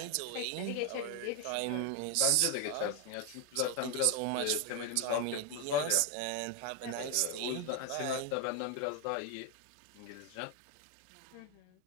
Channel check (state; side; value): different; both; correlation 0.01